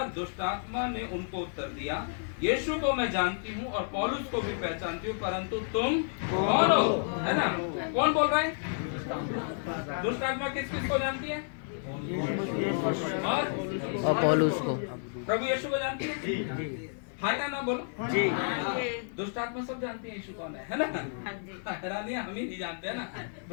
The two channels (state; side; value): silent; right; 57 dB below the other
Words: दुष्ट आत्मा ने उनको उत्तर दिया, यीशु को मैं जानती हूँ और पौलुस को भी पहचानती हूँ, परंतु तुम कौन हो? है ना, कौन बोल रहा है? दुष्ट आत्मा किस किस को जानती है? और पौलुस को। प्रभु यीशु को जानती है? जी हाँ या ना बोलो जी। दुष्ट आत्मा सब जानती है यीशु कौन है ना? हैरानी हम ही नहीं जानते है ना,